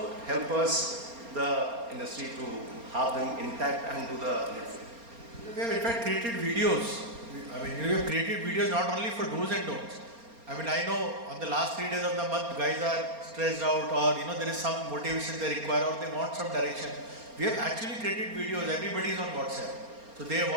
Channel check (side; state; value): left; late; 4.3 ms